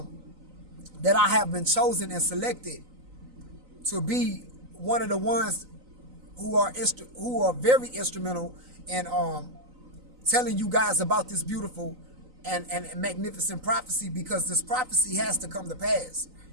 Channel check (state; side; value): late; left; 3.9 ms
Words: that I have been chosen and selected to be one of the ones who are very instrumental in telling you guys about this beautiful and magnificent prophecy, because this prophecy has to come to pass.